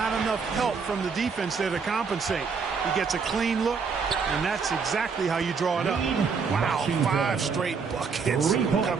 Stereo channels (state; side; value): quieter; left; 5.5 dB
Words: enough help from the defense there to compensate. He gets a clean look, and that's exactly how you draw it up. Wow, 5 straight buckets